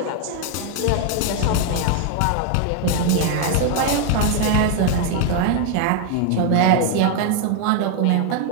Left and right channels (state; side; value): different; both; correlation 0.01